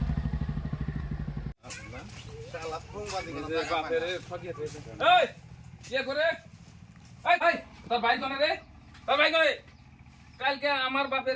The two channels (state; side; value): identical; both; correlation 1.00